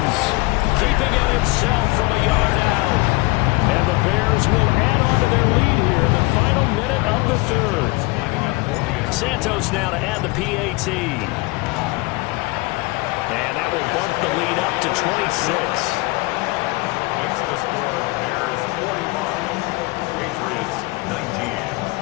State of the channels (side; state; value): right; quieter; 24.1 dB